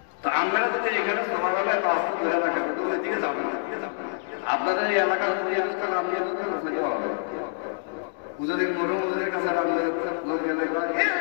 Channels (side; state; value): right; silent; digital silence